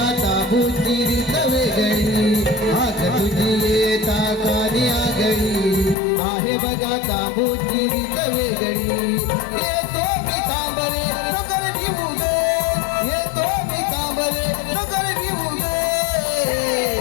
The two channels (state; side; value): drops out; right; at 6.0 s